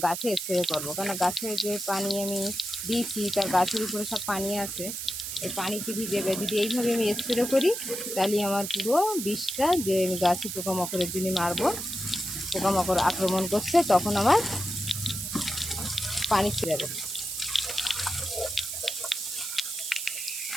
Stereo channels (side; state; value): right; noise; hiss, 5 dB below the sound